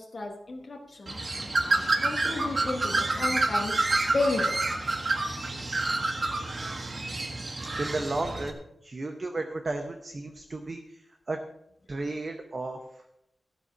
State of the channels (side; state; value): both; normal; correlation 0.94